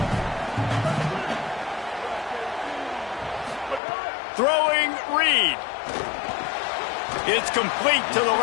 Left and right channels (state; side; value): drops out; right; at 3.8 s